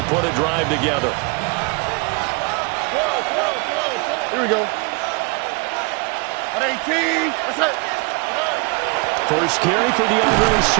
put a drive together. Here we go. At 18. That's it. First carry for DeAndre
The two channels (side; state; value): left; quieter; 30.5 dB